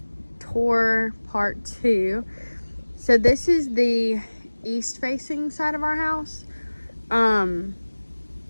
tour part 2. So this is the east facing side of our house. And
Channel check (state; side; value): inverted; both; correlation -1.00